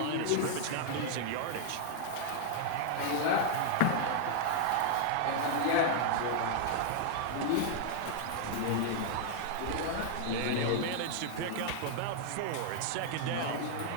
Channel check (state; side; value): different; both; correlation -0.01